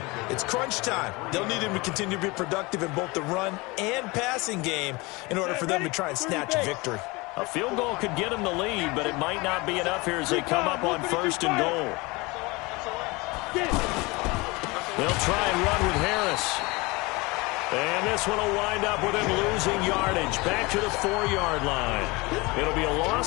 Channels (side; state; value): right; quieter; 24.6 dB